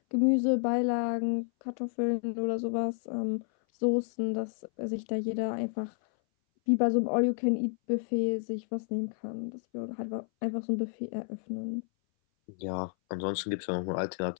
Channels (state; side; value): silent; right; 57 dB below the other